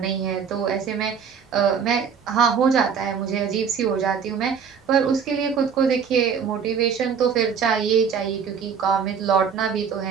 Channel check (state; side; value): quieter; left; 6.8 dB